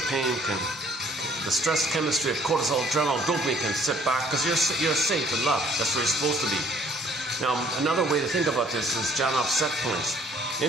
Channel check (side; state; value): both; normal; correlation 0.60